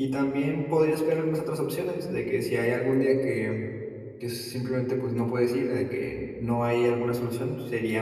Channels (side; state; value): both; identical; correlation 1.00